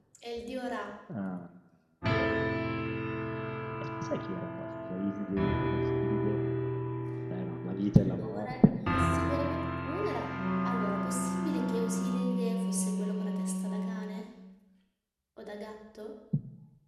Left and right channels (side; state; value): both; identical; correlation 1.00